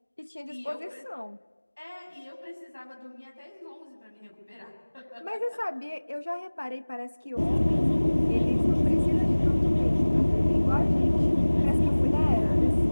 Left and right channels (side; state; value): both; inverted; correlation -1.00